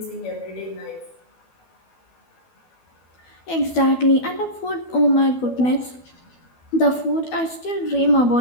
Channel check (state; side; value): late; right; 12 ms